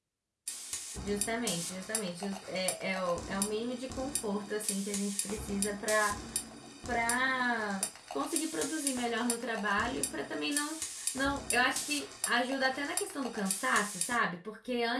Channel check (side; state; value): both; identical; correlation 1.00